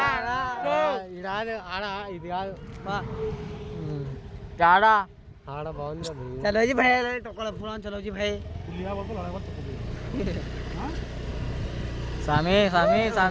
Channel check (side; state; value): both; identical; correlation 1.00